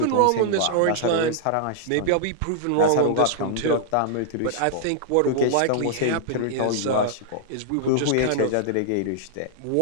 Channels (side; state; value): both; different; correlation -0.01